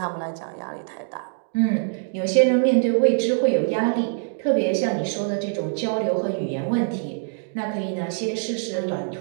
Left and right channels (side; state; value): left; silent; 63 dB below the other